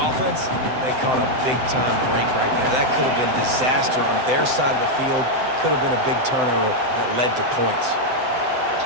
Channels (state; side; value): late; left; 7.8 ms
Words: they caught a big-time break right there. That could have been disaster on their side of the field. Could have been a big turnover that led to points.